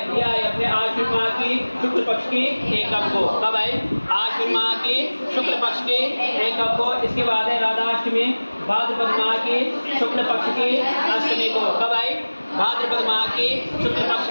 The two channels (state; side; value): inverted; both; correlation -1.00